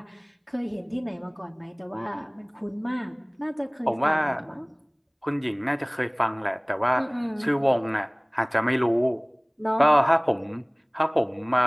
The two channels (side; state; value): both; identical; correlation 1.00